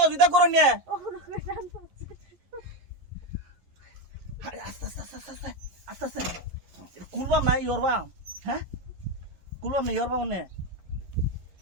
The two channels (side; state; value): left; late; 11 ms